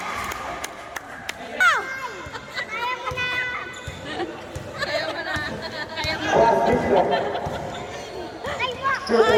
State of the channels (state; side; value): identical; both; correlation 1.00